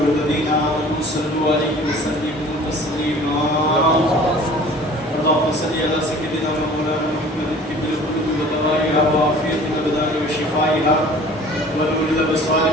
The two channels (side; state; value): both; normal; correlation 0.47